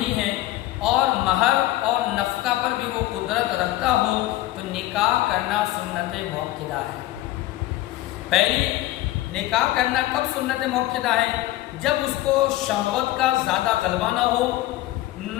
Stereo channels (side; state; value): right; quieter; 16.3 dB